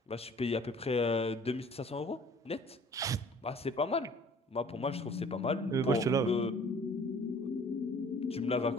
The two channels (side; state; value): both; normal; correlation 0.52